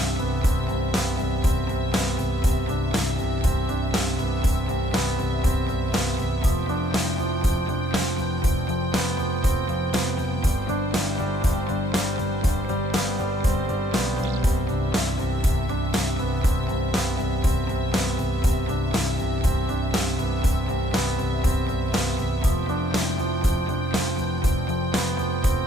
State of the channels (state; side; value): normal; both; correlation 0.68